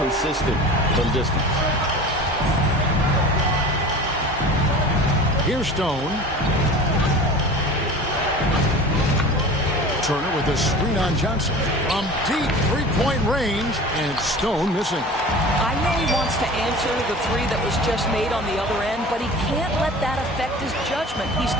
from distance. Here's Stone. Turner with a screen on Johnson. From deep three-point range, and Stone missing. I know he wants to answer the 3 that was just made on the other end, but he can't let that affect his judgment. He's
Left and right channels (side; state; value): both; normal; correlation 0.38